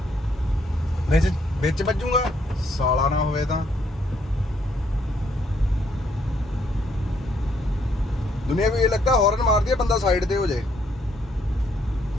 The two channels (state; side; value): normal; both; correlation 0.71